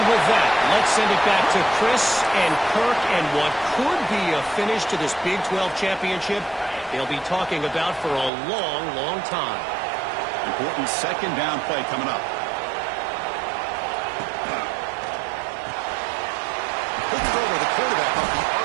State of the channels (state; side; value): drops out; left; at 8.3 s